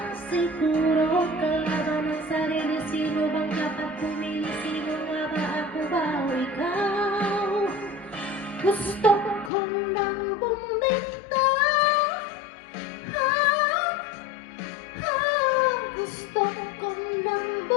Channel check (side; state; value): right; drops out; at 9.5 s